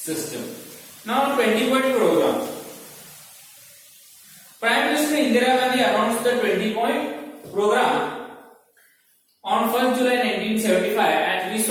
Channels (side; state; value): both; identical; correlation 1.00